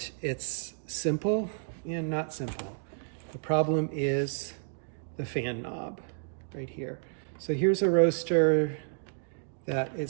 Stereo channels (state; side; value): silent; left; digital silence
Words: it's simple and not simple. The problem is the fan knob right here. So here's a roaster that